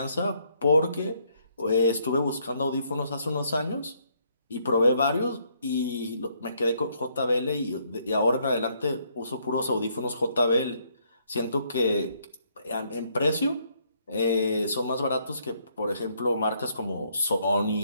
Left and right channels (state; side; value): inverted; both; correlation -0.70